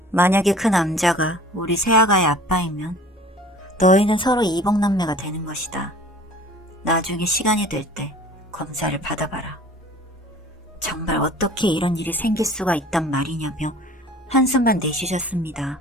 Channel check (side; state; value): both; normal; correlation 0.47